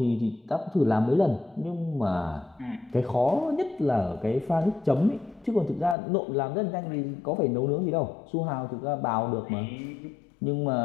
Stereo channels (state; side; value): drops out; right; at 6.0 s